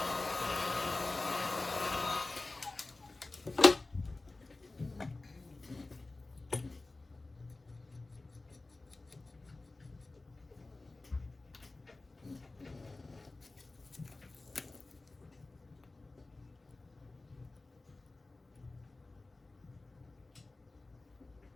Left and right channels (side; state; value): right; quieter; 3.2 dB